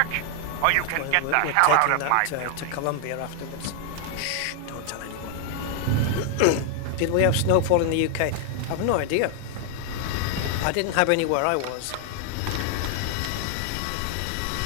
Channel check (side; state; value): both; different; correlation 0.00